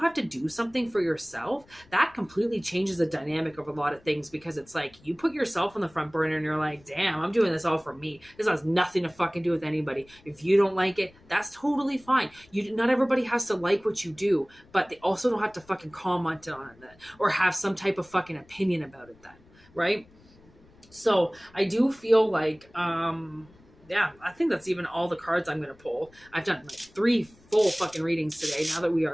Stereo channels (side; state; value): left; noise; rumble, 27 dB below the sound